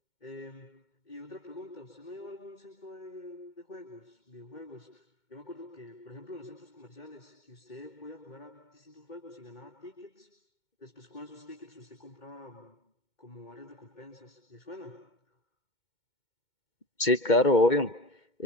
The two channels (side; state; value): right; late; 2.2 ms